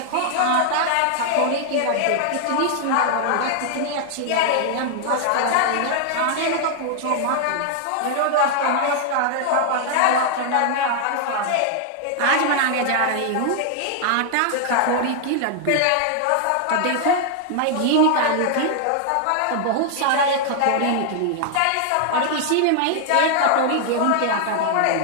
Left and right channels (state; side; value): different; both; correlation 0.00